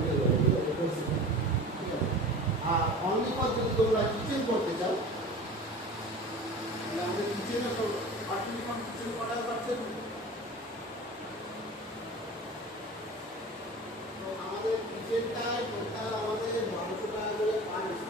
হয়ে যাবে, ঠিক আছে, ঠিক আছে। আর অনলি ফর যদি তোমরা কিচেন করতে চাও, তাহলে আমাদের কিচেনে তো আর্টিফিশিয়াল কিচেন করা পাচ্ছেন। তো আমাদের কিচেনটায় টোটাল আমাদের 1200 টাকা করে পার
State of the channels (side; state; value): both; normal; correlation 0.37